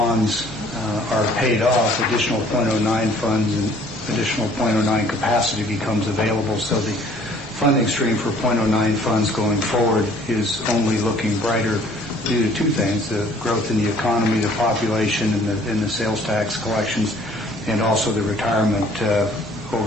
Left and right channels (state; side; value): normal; both; correlation 0.57